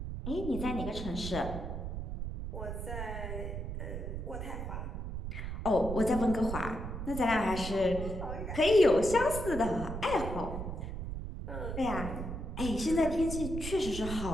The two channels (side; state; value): right; noise; rumble, 5 dB below the sound